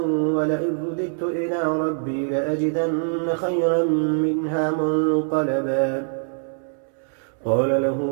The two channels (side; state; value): left; silent; 63 dB below the other